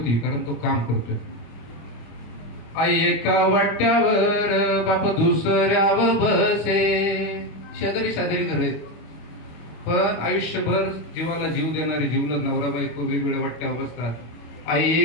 कारण तो काम करतोय. आई एका वाट्यावर, बाप दुसऱ्यावर बसे. शेजारी शेजारी घर आहेत, पण आयुष्यभर जीवाला जीव देणारे जीवलग नवरा बायको वेगवेगळ्या वाट्यावर बसतात. आई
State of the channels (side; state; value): right; late; 25 ms